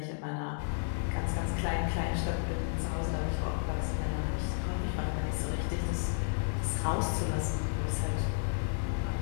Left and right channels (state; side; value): silent; right; digital silence